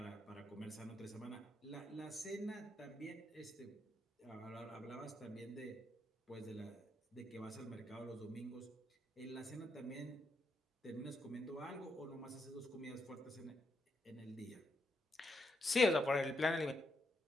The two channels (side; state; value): both; normal; correlation 0.80